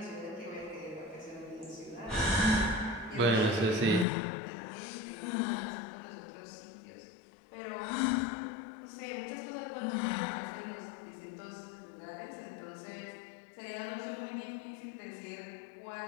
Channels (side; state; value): right; drops out; at 4.0 s